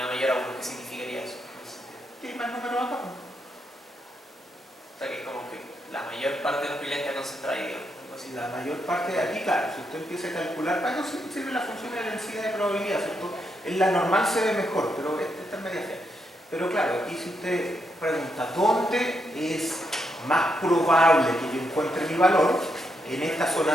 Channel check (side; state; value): both; normal; correlation 0.80